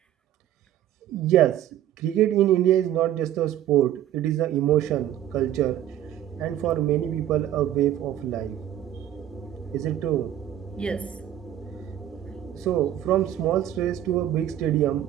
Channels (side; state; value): left; quieter; 11.8 dB